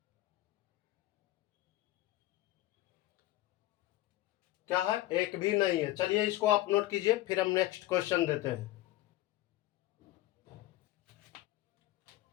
क्या है, एक भी नहीं है। चलिए इसको आप नोट कीजिए, फिर हम नेक्स्ट क्वेश्चन देते हैं।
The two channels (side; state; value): right; quieter; 16.4 dB